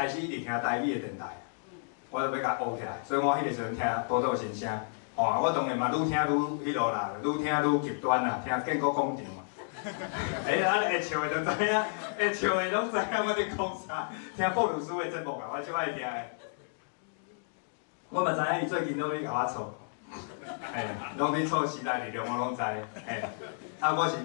始一直听台语的电台，我就要甲学起来。所以我迄个时阵听报道新声，吼，我当然嘛愈听愈迄落啦，愈听愈极端啦，听建国广场。安尼会笑的就知影，会笑的拢知影我伫讲啥。听布鲁斯的节目啊，我最爱听的。我嘛知影伊最近拢咧甲我吵，拢咧吵时代力量，我拢知。啊，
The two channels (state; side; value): silent; right; digital silence